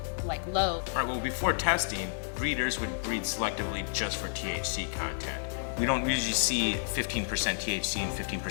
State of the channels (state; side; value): silent; right; digital silence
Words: low? All right, well, before testing, breeders would breed selectively just for THC content. We don't usually see 15% THC and 15%